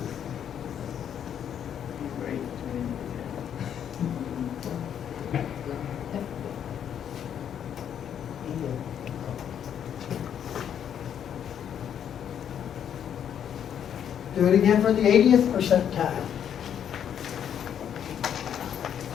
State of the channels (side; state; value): right; quieter; 9.0 dB